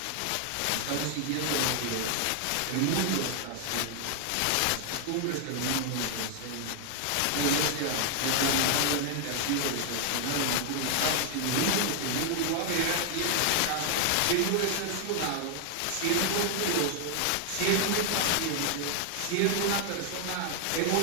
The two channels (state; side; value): different; both; correlation 0.00